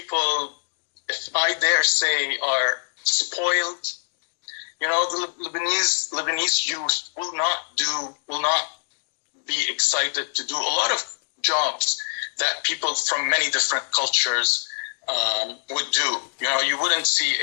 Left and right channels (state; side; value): silent; right; digital silence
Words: if I dare say, are spoiled. You know, the Lebanese youth will not be excited to do a lot of jobs that people from many different cultures would do. You know, you wouldn't see